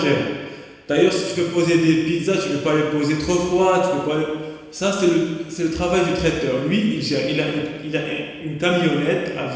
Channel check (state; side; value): identical; both; correlation 1.00